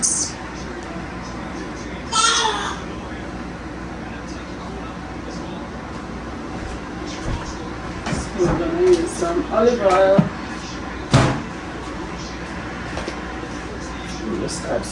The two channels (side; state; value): both; identical; correlation 1.00